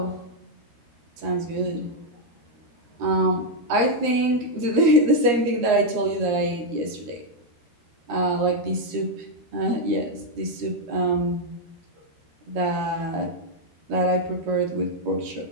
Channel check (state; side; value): late; left; 13 ms